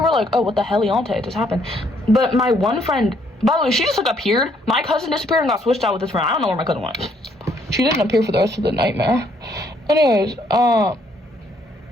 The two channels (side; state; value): both; normal; correlation 0.68